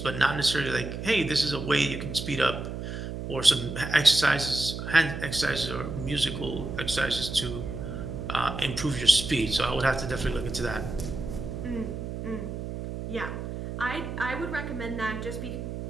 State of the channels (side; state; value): right; noise; hum, 6 dB below the sound